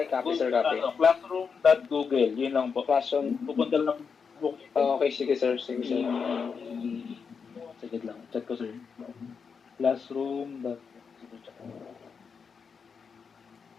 copy, sir, copy. Classroom.google. Yun lang po. Classroom. Pupunta lang po. Okay, sige, sir. Sige, sir. Sige lang. Chat ko, sir. Classroom.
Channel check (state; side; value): quieter; right; 5.9 dB